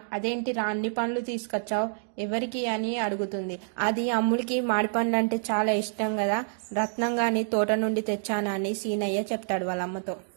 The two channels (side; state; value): left; silent; digital silence